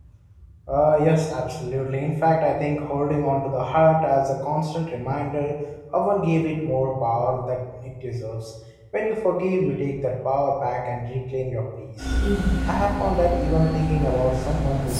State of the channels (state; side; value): identical; both; correlation 1.00